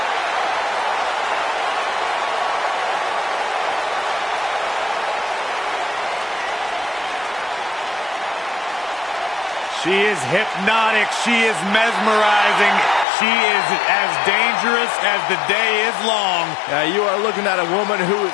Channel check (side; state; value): right; drops out; at 13.1 s